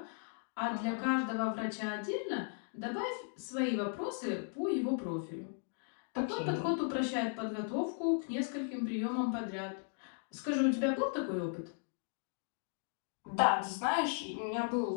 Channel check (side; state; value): right; silent; 53 dB below the other